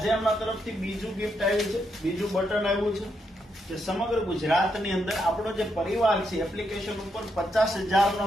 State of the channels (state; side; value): normal; both; correlation 0.80